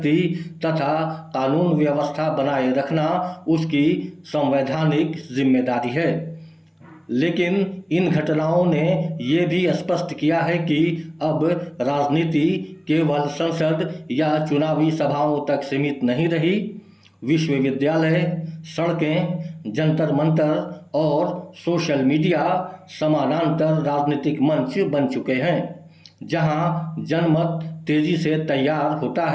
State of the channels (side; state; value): both; identical; correlation 1.00